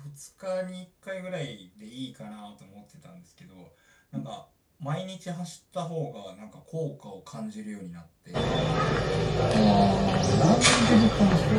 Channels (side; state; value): both; identical; correlation 1.00